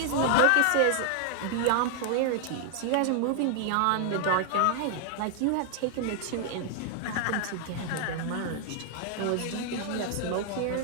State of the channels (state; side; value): different; both; correlation 0.00